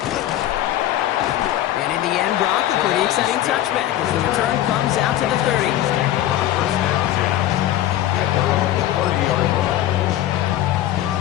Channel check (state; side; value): quieter; right; 13.0 dB